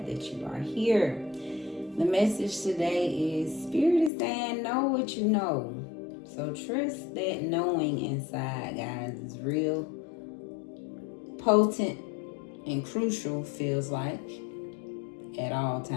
that you are here. The message today is Spirit is saying know what you know. So trust that knowing inside, guys, is real potent and crucial, feels like, at all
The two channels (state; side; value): drops out; right; at 4.1 s